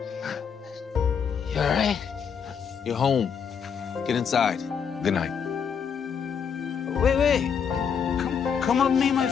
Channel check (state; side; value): quieter; right; 7.0 dB